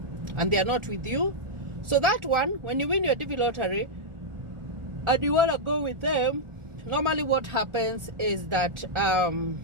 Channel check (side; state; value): left; late; 1.4 ms